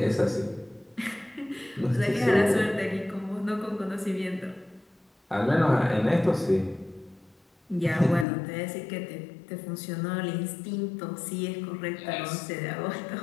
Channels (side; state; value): right; drops out; at 8.2 s